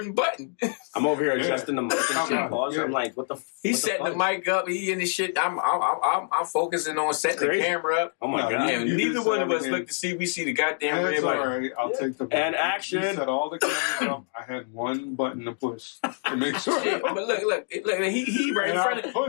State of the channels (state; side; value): silent; right; 61 dB below the other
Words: button. I'm over here adjusting the mic and shit. I'm like, what the? He's setting the mic up. He in the shit. I'm focusing on setting the camera up. Oh my god! Yeah, neither one of us look to see. We see the goddamn red light. All right, I'll take the button. And action. You set all the cameras up. I had one button to push to make sure. But look. He right in front of.